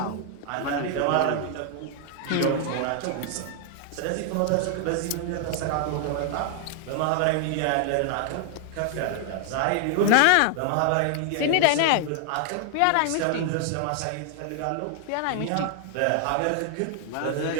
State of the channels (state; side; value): different; both; correlation 0.00